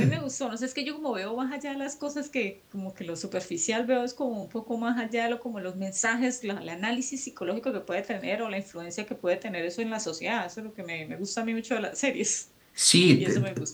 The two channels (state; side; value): identical; both; correlation 1.00